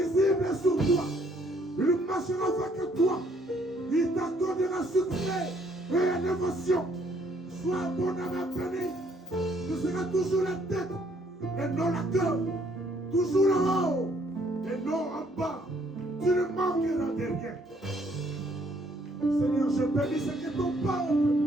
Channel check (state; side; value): normal; both; correlation 0.66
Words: est sur toi. Il marchera avec toi. Il t'accordera succès et innovation. Sois abondamment béni. Tu seras toujours la tête et non la queue. Toujours en haut et non en bas. Tu ne manqueras de rien. Seigneur, je bénis ce que ton peuple